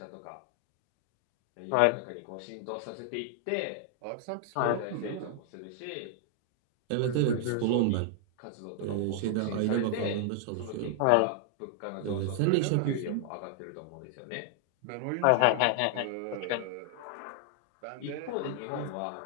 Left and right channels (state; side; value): different; both; correlation 0.00